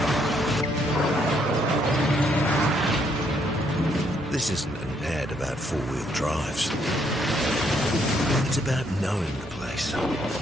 This isn't an ad about four-wheel drives. It's about knowing the place,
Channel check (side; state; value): both; normal; correlation 0.71